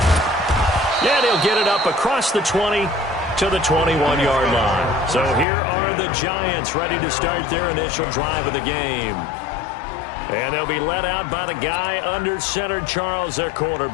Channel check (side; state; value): right; drops out; at 5.5 s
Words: And he'll get it up across the 20 to the 21-yard line. So here are the Giants ready to start their initial drive of the game. And they'll be led out by the guy under center, Charles, their